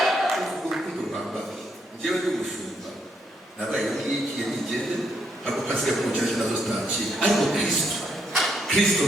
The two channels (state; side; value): normal; both; correlation 0.75